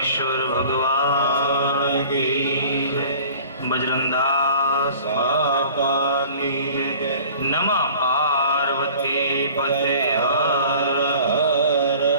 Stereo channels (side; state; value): both; inverted; correlation -0.47